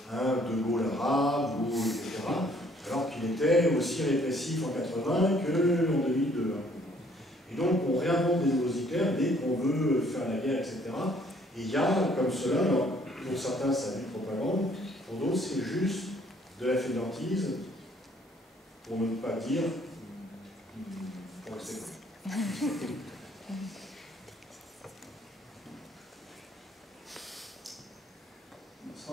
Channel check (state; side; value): normal; both; correlation 0.62